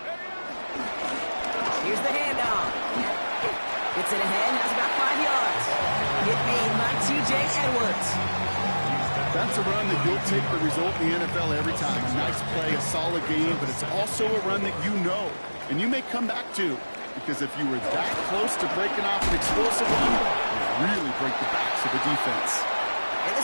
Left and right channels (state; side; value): inverted; both; correlation -1.00